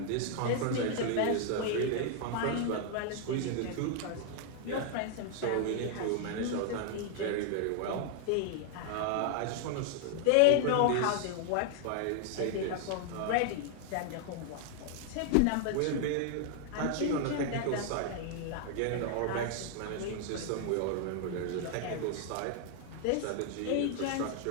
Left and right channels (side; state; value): both; different; correlation 0.00